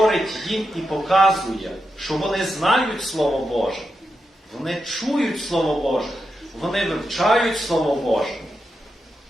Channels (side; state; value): both; normal; correlation 0.87